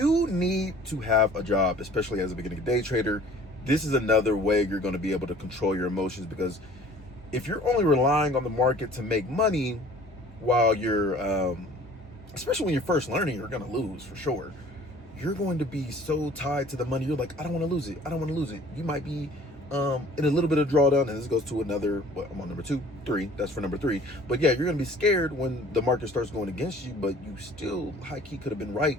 need to have a job, especially as a beginning day trader. This is another way you're going to be able to control your emotions, because if you're only relying on the market to make money while you're, especially when you're first learning, you're going to lose for sure. You're going to be so tied to the money. You're like, I don't want to lose it. I don't want to lose it. You might be in a little bit of drawdown, and this goes to another, I'm on number 3. That's for number 3. But yeah, you're going to be scared when the market starts going against you, but you still high key could have been right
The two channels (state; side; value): normal; both; correlation 0.51